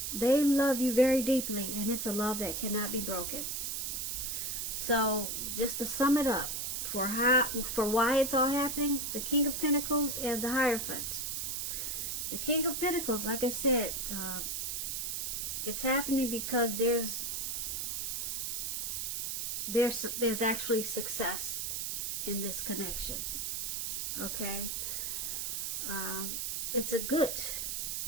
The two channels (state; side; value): noise; right; hiss, 2 dB below the sound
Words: they love you very deeply, and it's a love that cannot be broken. So just to sum it up, for why it's all happening, the King of Pentacles and the Hierophant. The King of Pentacles, like I said, it's happening because there's actually success in this connection. Okay? It's a good